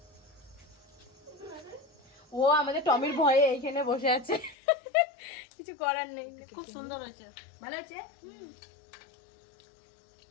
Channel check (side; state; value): right; drops out; at 4.5 s